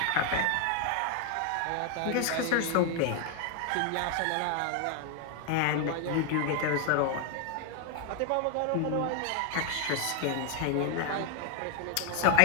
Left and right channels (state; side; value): different; both; correlation 0.00